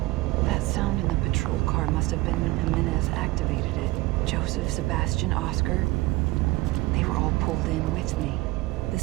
That sound in the patrol car must have been when Jimenez activated it. Joseph, Sebastian, Oscar. They were all pulled in with me. The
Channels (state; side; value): quieter; left; 20.3 dB